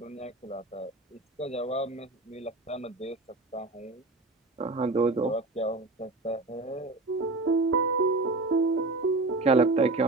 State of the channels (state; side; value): quieter; left; 3.1 dB